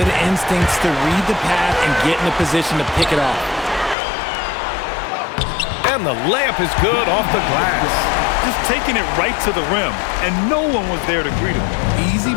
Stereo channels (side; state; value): right; drops out; at 4.0 s